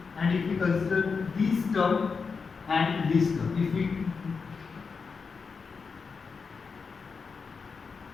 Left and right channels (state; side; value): quieter; right; 5.2 dB